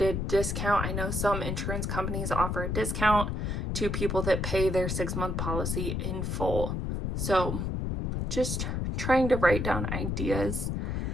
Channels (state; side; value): noise; left; rumble, 1 dB below the sound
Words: a discount. I know some insurance companies offer a discount to people that pay their 6-month policy in full. So just trying to write down ideas.